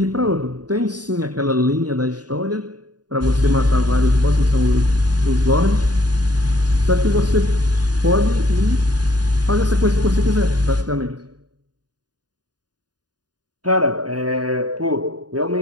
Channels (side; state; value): left; late; 0.69 ms